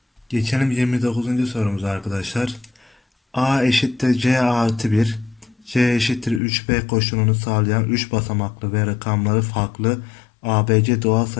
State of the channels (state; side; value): drops out; right; at 6.4 s